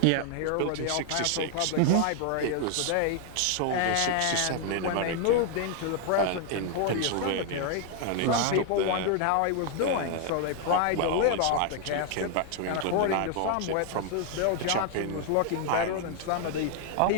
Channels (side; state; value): both; different; correlation 0.00